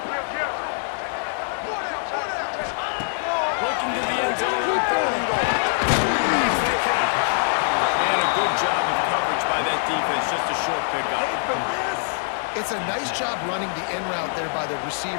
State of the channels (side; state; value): right; silent; digital silence